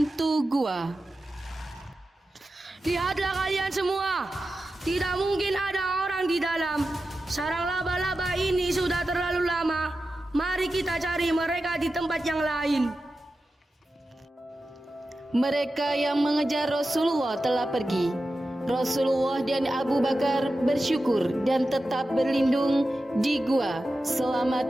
gua. Lihatlah kalian semua, tidak mungkin ada orang di dalam. Sarang laba-laba ini sudah terlalu lama. Mari kita cari mereka di tempat yang lain. Mereka yang mengejar Rasulullah telah pergi. Rasulullah dan Abu Bakar bersyukur dan tetap berlindung di gua selama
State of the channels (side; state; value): both; normal; correlation 0.92